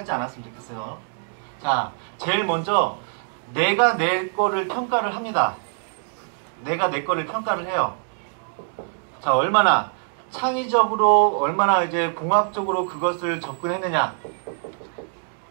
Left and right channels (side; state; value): left; silent; digital silence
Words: 않았으면 좋겠어요. 자, 제일 먼저 내가 내 거를 평가를 합니다. 내가 내 거를 평가를 해요. 자, 얼마나 창의적으로, 얼마나 이제 공학적으로 그것을 접근했느냐.